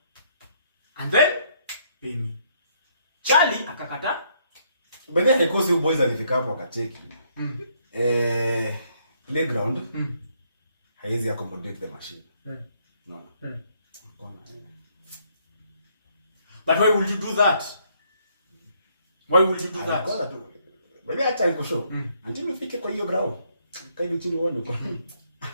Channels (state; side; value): inverted; both; correlation -0.70